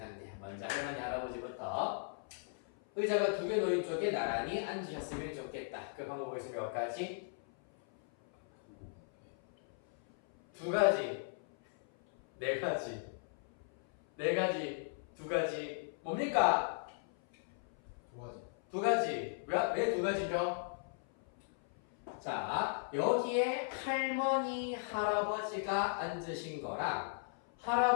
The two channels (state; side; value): silent; right; 53 dB below the other